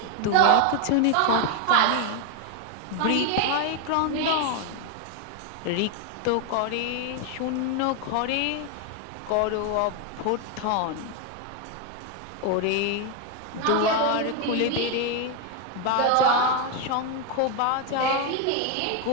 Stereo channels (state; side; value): different; both; correlation 0.01